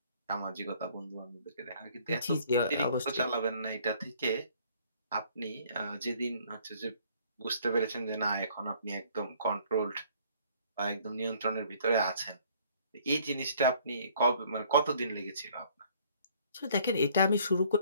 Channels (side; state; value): both; inverted; correlation -0.59